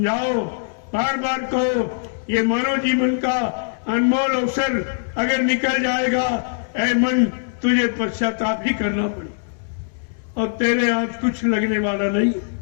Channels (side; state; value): right; silent; 65 dB below the other